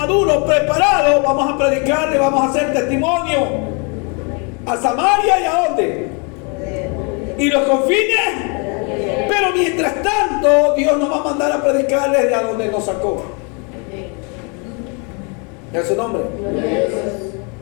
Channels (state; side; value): quieter; right; 34.3 dB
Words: preparados, vamos a predicarle, vamos a hacer testimonio a Samaria y a dónde. Y los confines. Pero mientras tanto, Dios nos va a mandar a predicarle de a donde nos sacó. ¿Es su nombre?